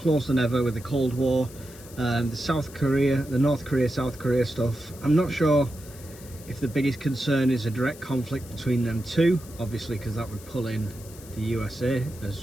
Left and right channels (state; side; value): noise; left; hiss, 19 dB below the sound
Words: than ever with the Cold War, the North Korea, South Korea stuff. I'm not sure if the biggest concern is a direct conflict between them two, obviously, because that would pull in the USA